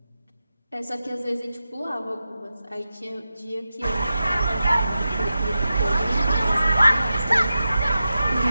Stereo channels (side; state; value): both; inverted; correlation -0.92